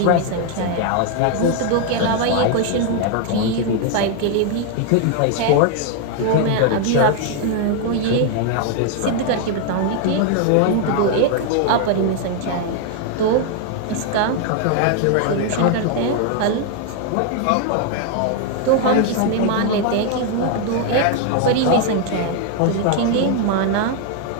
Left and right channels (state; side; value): different; both; correlation 0.00